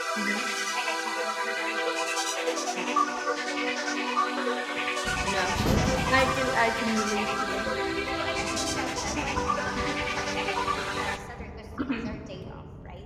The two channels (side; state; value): both; identical; correlation 1.00